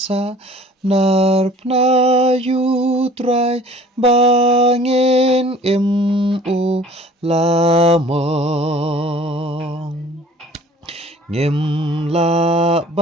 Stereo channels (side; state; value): both; normal; correlation 0.49